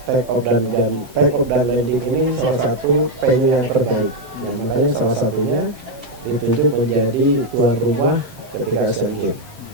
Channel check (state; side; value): late; left; 7.6 ms